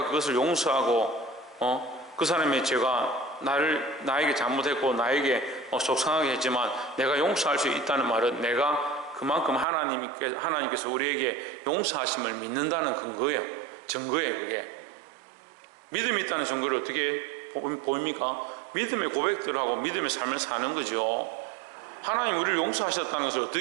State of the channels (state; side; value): drops out; left; at 9.7 s